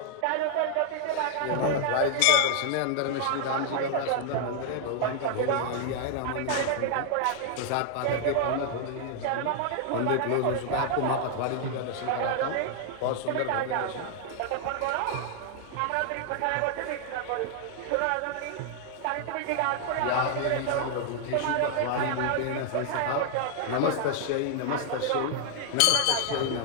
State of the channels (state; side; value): different; both; correlation 0.00